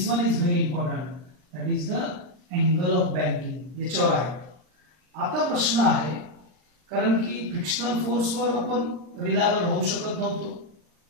one is very important, that is the angle of banking. याच्यावर आहे. आता प्रश्न आहे, कारण की फ्रिक्शनल फोर्सवर आपण रिलायबल राहू शकत नव्हतो,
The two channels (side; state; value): left; late; 39 ms